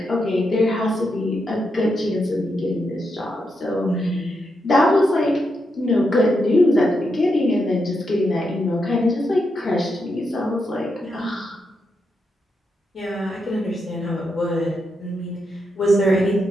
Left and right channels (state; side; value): normal; both; correlation 0.83